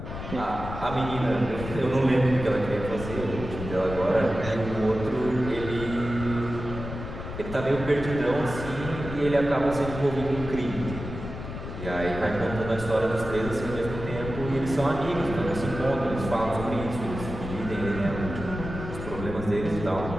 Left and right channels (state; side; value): noise; left; rumble, 8 dB below the sound